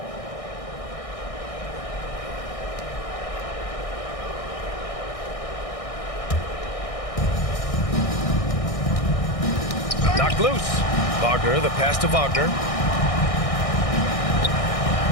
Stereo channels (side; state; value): right; late; 1.6 ms